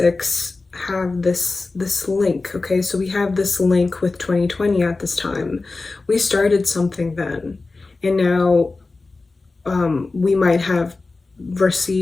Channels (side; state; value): right; quieter; 3.6 dB